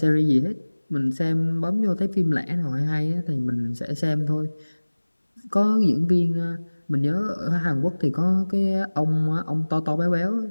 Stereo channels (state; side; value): inverted; both; correlation -1.00